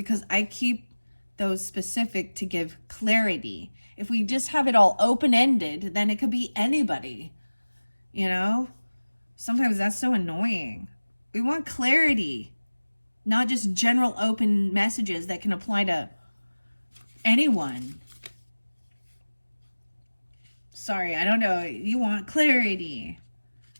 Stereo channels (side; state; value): both; inverted; correlation -1.00